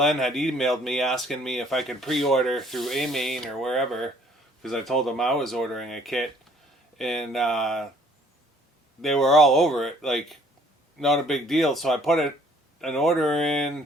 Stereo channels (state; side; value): normal; both; correlation 0.59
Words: had emailed me asking me if I could pre-order through AMain or wherever, because I told them I was ordering a kit. And they were all over it, like, not a big deal. So I put an order in.